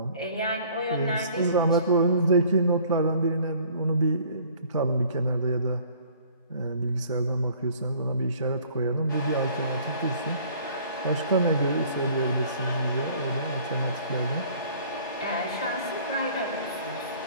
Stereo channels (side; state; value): both; inverted; correlation -0.54